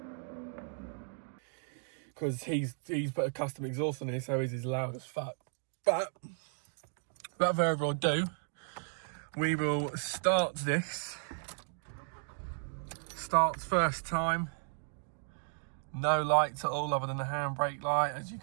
Because he's put a custom exhaust on it, so he's as loud as fuck. But without further ado, we will start this. Starts first time. No lights at all other than the handbrake light, as you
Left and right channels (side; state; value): left; silent; 55 dB below the other